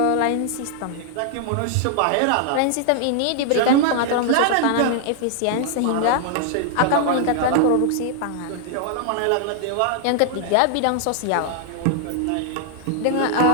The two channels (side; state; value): both; different; correlation 0.00